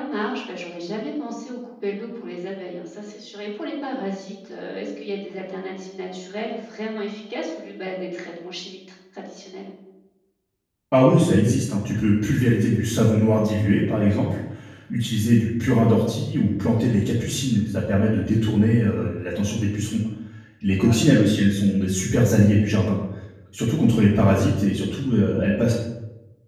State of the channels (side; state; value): both; identical; correlation 1.00